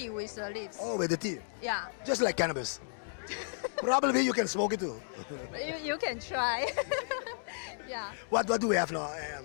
with the leaves. Oh, with the tea. Yeah, Just like cannabis. Probably you can smoke it too. you can try. Yeah. What do we have now?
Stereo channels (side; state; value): right; silent; digital silence